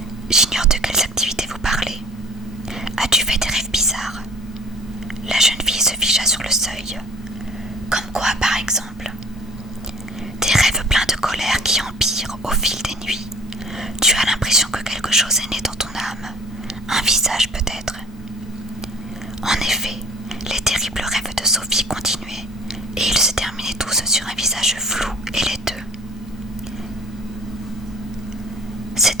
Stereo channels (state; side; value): normal; both; correlation 0.49